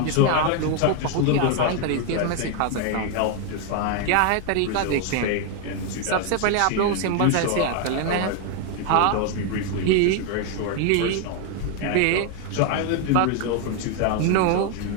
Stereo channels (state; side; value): different; both; correlation 0.01